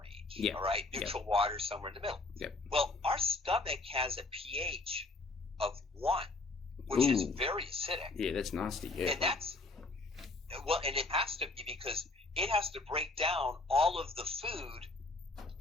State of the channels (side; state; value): right; quieter; 3.3 dB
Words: Yeah. All right. Neutral water somewhere in the middle. Yep. Well, our stomach has a pH of 1, which is very acidic. Yeah, that's nasty. Yeah. And and it has to be, because it has to break down all of the food